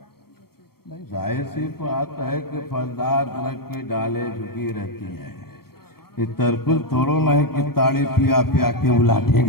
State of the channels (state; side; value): late; right; 0.94 ms